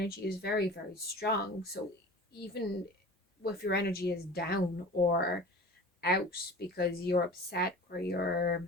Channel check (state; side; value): normal; both; correlation 0.38